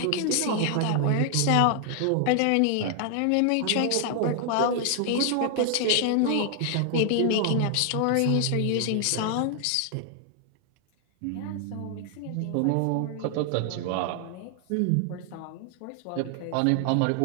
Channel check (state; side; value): different; both; correlation 0.00